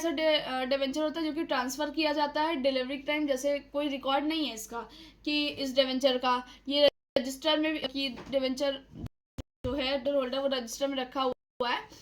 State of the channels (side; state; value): both; identical; correlation 1.00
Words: डिवेंचर होता है जो कि ट्रांसफ़र किया जाता है डिलीवरी टाइम, जैसे कोई रिकॉर्ड नहीं है इसका कि इस डिवेंचर का, ये रजिस्टर में कि डिवेंचर जो है होल्डर वो रजिस्टर में रखा हुआ है,